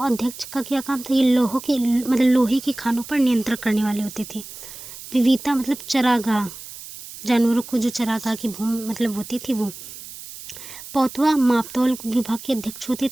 अध्यक्ष का क्या काम था, ये लोहे के खानों पर नियंत्रण करने वाले होते थे। विविता मतलब चरागाह, जानवरों को जो चरागाह की भूमि मतलब होती थी वो। पौतवा मापतौल विभाग के अध्यक्ष होते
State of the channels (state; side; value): noise; right; hiss, 14 dB below the sound